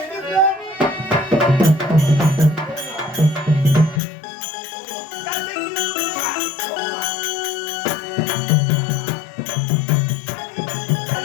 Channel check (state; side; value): drops out; right; at 4.0 s